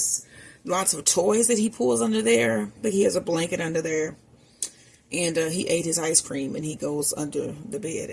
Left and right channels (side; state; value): both; identical; correlation 1.00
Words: lots of toys that he pulls under there, but he has a blanket under there. And he ate his ice cream, and he goes under the bed.